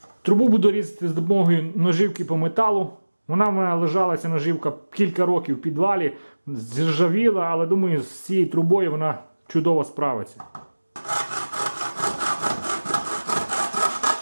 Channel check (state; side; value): inverted; both; correlation -1.00